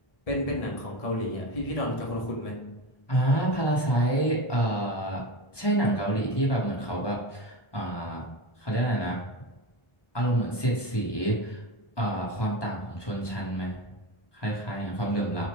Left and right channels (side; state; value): right; late; 1.2 ms